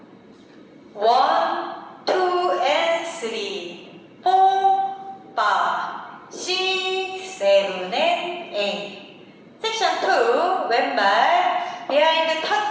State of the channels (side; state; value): both; identical; correlation 1.00